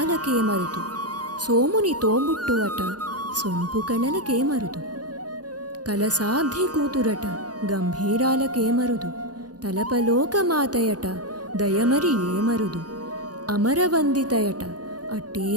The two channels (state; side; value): late; left; 0.69 ms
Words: మరుదు, సోముని తోబుట్టు అట సొంపు కళలకే మరుదు, కలసాబ్ది కూతురట గంభీరాలకే మరుదు, తలపలోకమాతయట దయమరి ఏమరుదు, అమరవందితయట అట్టే